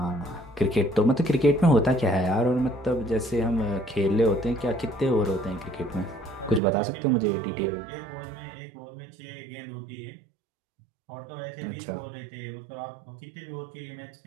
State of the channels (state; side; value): drops out; left; at 6.6 s